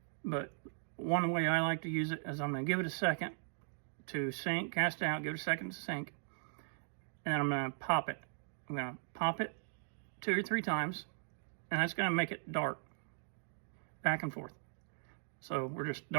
But one way I like to use it is I'm going to give it a second to sink, cast out, give it a second to sink, and then I'm going to pop it. I'm going to pop it 2 or 3 times, and that's going to make it dart back and forth. So we're just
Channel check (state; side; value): silent; left; digital silence